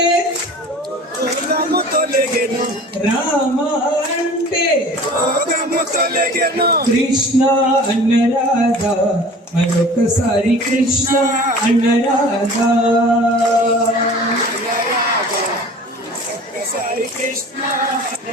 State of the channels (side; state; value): both; normal; correlation 0.43